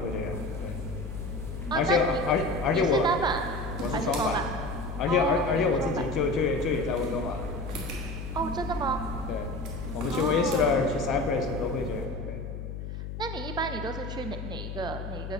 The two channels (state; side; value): noise; left; hum, 7 dB below the sound